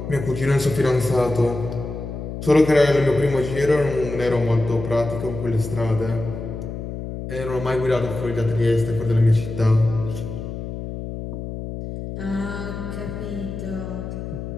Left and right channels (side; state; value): left; noise; hum, 7 dB below the sound